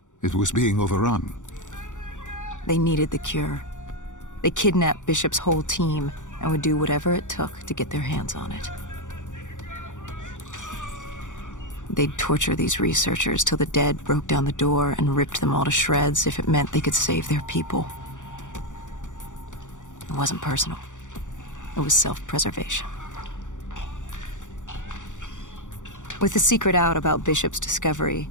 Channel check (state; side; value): late; right; 0.86 ms